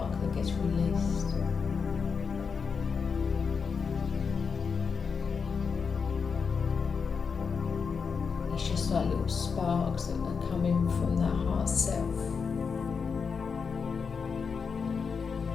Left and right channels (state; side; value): quieter; right; 5.7 dB